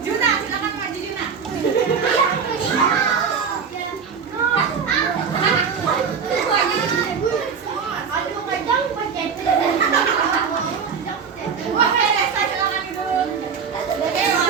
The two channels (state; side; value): quieter; left; 6.2 dB